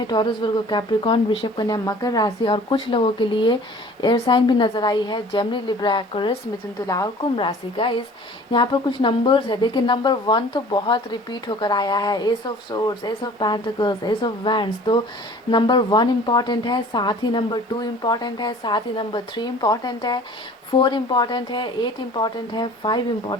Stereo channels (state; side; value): normal; both; correlation 0.47